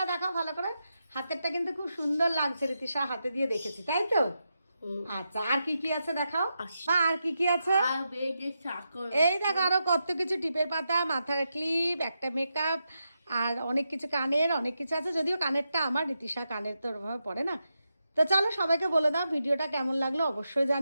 দেখাও ভালো করে। হাতেরটা কিন্তু খুব সুন্দর লাগছে, রীতিশা হাতে দিয়ে দেখেছি তাই তো। আচ্ছা, আর কি কি আছে দেখাও। আর কি কি আছে? আর বেগে চাকর এই দেখো আরো কত কিছু, টিপের পাতা, মাথার ক্লিপ, একটা মেকআপ, আর অনেক কিছু কানের, অনেক কিছু আছে। যদিও কানেরটা আমার, রীতিশা কানের তো ওরভাবে পড়ে না। তো চলো সবাইকে বলে দাও ভিডিওটা কেমন লাগলো অবশ্যই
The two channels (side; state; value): both; inverted; correlation -0.86